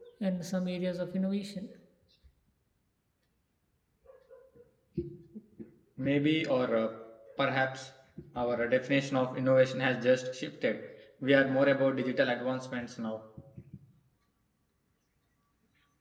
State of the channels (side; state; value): both; identical; correlation 1.00